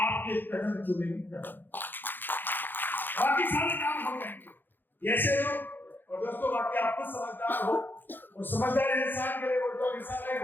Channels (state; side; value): late; right; 0.094 ms